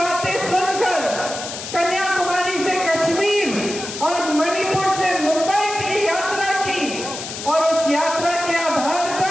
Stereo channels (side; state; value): left; noise; hiss, 8 dB below the sound